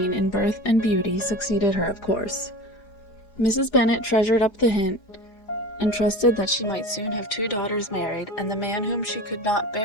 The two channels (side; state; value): right; late; 4.9 ms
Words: in birth and beauty, succeeded her, of course. Mrs. Bennet treasured up the hint, and trusted that she might soon have 2 daughters married, and the man whom she could not